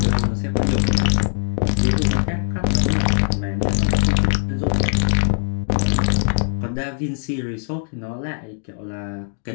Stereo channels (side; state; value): right; silent; digital silence